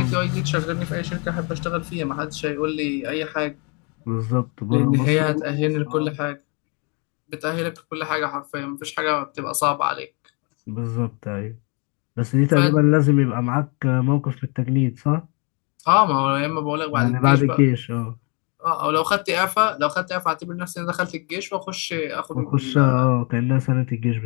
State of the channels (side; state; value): right; quieter; 33.2 dB